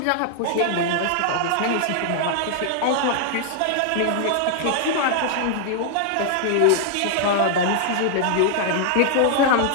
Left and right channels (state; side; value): different; both; correlation 0.00